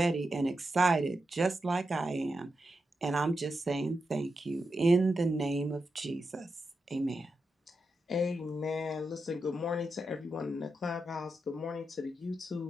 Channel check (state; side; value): normal; both; correlation 0.87